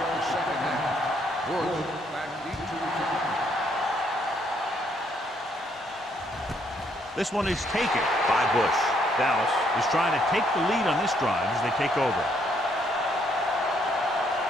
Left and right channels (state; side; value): normal; both; correlation 0.70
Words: the second half. Woods back deep to return. This one is taken by Bush. Dallas is trying to take the lead on this drive as they take over.